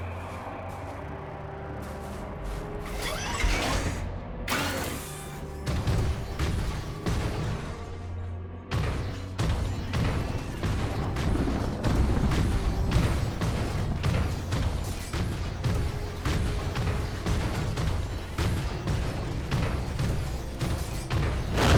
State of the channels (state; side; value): identical; both; correlation 1.00